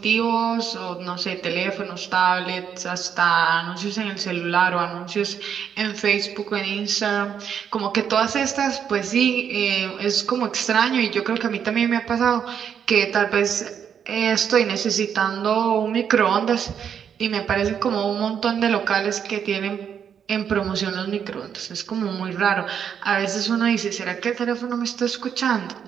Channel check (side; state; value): left; quieter; 8.0 dB